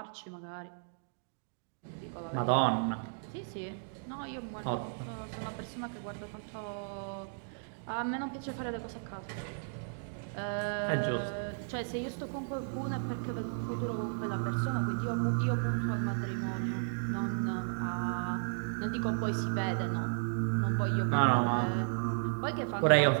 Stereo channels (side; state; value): left; silent; digital silence